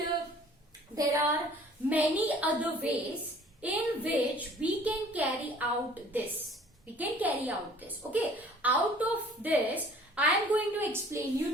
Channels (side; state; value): both; normal; correlation 0.52